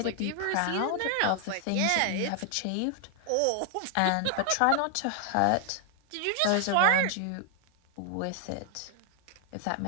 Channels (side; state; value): both; different; correlation 0.00